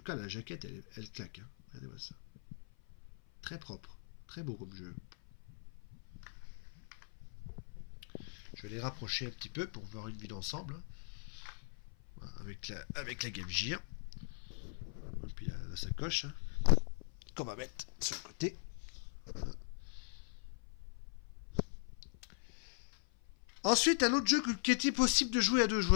cas, la jaquette, elle claque. Hein. Regardez-moi ça. Très propre. Très beau comme jeu. Je vais les rapprocher un petit peu pour voir une vue d'ensemble. Hein. Avec la Game Gear. Et puis la sacoche. Hein, qu'on va mettre sur le côté. Voilà. Ensuite, un autre jeu qui était possible de jouer à 2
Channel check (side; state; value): right; silent; 51 dB below the other